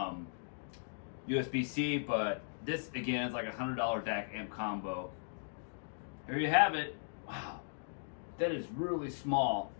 USB-C, but this again is like a $100 DAC amp combo. Here you have it. Wow, that is really small.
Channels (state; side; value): silent; right; digital silence